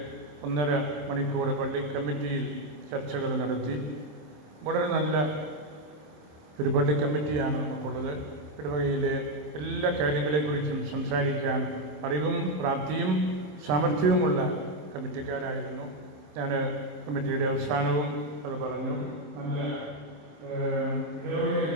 1.5 മണിക്കൂർ പള്ളി കമ്മിറ്റിയിൽ ചർച്ചകൾ നടത്തി. വളരെ നല്ല ഒരു പള്ളി കമ്മിറ്റിയാണ് നമുക്കുള്ളത്. ഇടവകയിലെ എല്ലാ കാര്യങ്ങളെക്കുറിച്ചും സംസാരിക്കാൻ അറിവും പ്രാപ്തിയും സാമർഥ്യവുമുള്ള കമ്മിറ്റിക്കാരായിരുന്നു. ഞാൻ കമ്മിറ്റിയുടെ അവസാനവും അത് പറഞ്ഞു. നല്ല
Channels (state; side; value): late; left; 27 ms